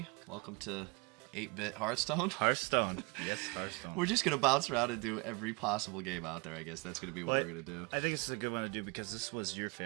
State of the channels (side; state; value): left; quieter; 29.0 dB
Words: Welcome to 8-Bit Hearthstone. Hearthstone. Yes, Hearthstone. We're just going to bounce around and do every possible game out there, I guess. That's going to be what we're going to do. I think this is a good one to do because this was your